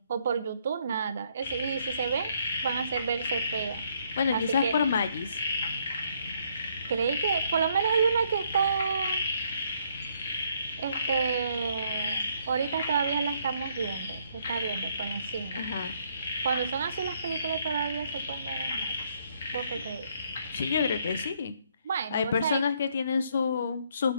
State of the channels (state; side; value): inverted; both; correlation -0.70